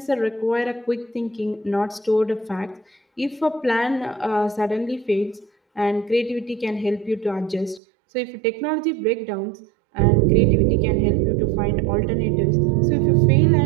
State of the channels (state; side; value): drops out; left; at 7.8 s